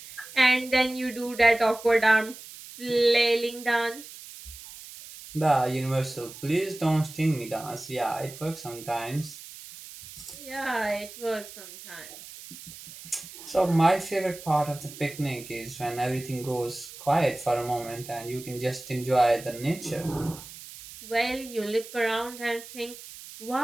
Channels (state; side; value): noise; right; hiss, 15 dB below the sound